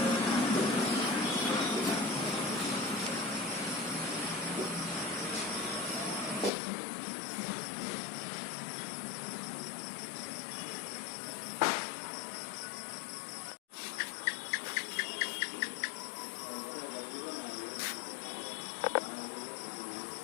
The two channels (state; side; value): drops out; right; at 6.5 s